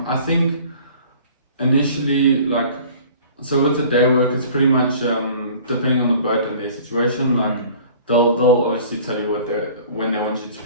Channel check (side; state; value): both; inverted; correlation -0.48